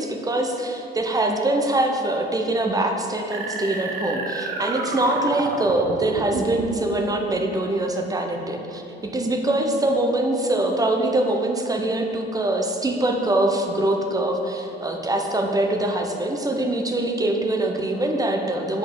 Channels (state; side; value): normal; both; correlation 0.56